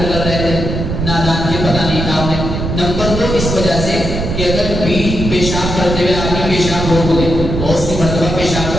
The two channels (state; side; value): noise; right; rumble, 3 dB below the sound